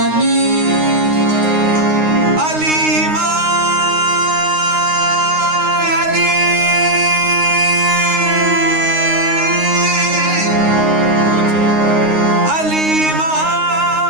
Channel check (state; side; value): late; left; 9.6 ms